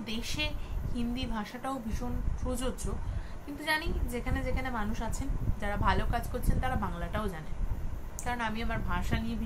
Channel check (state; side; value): identical; both; correlation 1.00